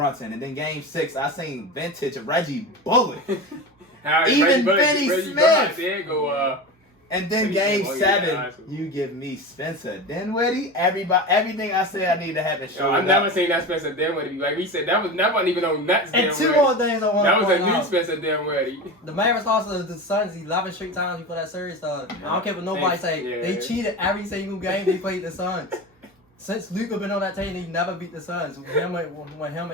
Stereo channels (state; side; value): normal; both; correlation 0.26